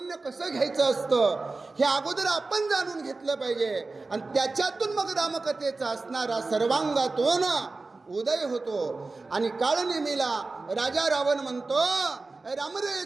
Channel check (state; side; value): quieter; left; 3.6 dB